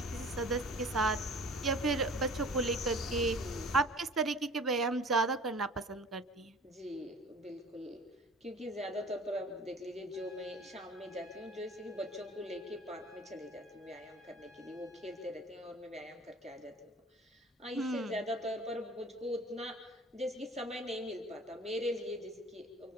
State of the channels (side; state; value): both; normal; correlation 0.45